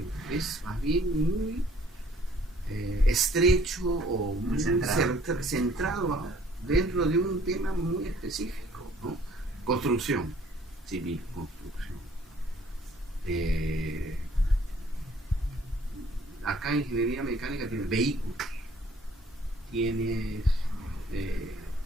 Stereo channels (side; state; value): both; normal; correlation 0.58